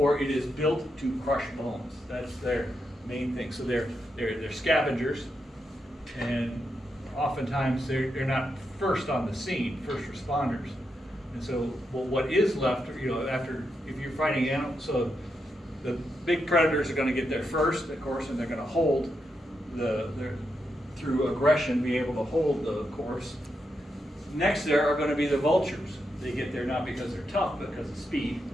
it is built to crush bones. That's their main thing. So they're scavengers, and oftentimes they're not first on the scene, first responders. And so, well, what is left, after if you're fighting animals, so the big predators are going to get there first, of course, and they're going to hold through aggression, be able to hold the course. Next there are going to be the vultures. They get there not because they're tough, but because of speed.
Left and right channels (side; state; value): both; normal; correlation 0.84